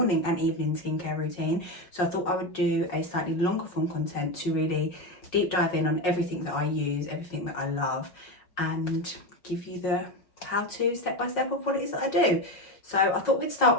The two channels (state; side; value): late; right; 5.5 ms